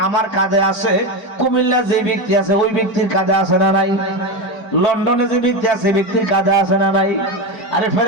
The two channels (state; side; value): late; right; 4.9 ms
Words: আমার কাঁধে আছে, কুমিল্লা যে ব্যক্তি আছে ওই ব্যক্তির কাঁধে আছে না নাই? লন্ডনে যে ব্যক্তি আছে ব্যক্তির কাঁধে আছে না নাই? আরে